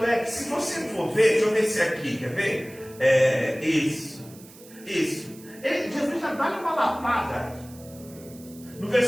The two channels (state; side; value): noise; right; hiss, 21 dB below the sound